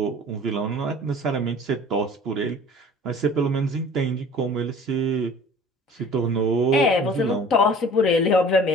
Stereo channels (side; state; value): both; normal; correlation 0.46